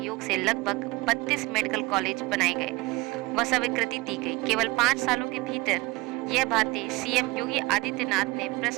से लगभग 32 मेडिकल कॉलेज बनाए गए व स्वीकृति दी गई। केवल 5 सालों के भीतर यह बातें सीएम योगी आदित्यनाथ ने प्रेस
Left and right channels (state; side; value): quieter; left; 22.9 dB